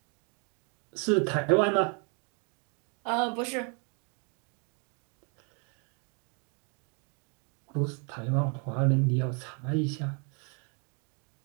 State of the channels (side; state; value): left; quieter; 37.2 dB